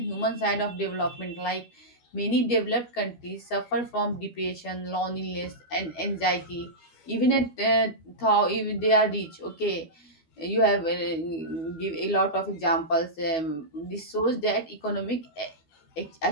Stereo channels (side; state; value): right; late; 12 ms